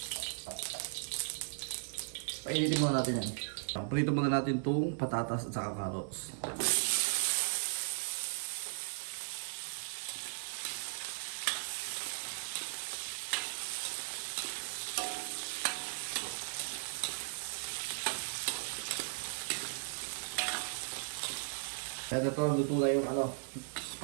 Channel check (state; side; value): silent; left; digital silence